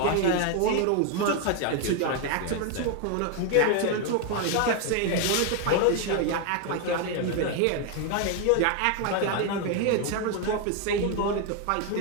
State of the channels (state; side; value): different; both; correlation 0.01